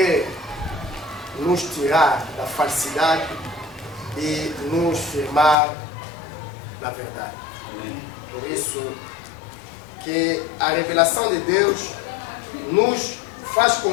nos tirar da falsidade e nos firmar na verdade. Amém. Por isso que a revelação de Deus nos faz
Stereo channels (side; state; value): right; drops out; at 5.6 s